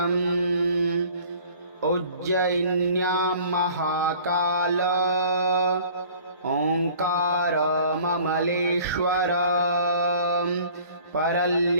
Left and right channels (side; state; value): both; inverted; correlation -0.50